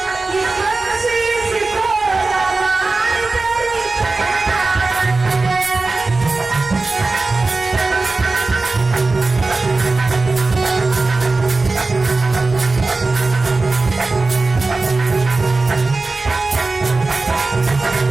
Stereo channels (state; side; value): quieter; left; 3.6 dB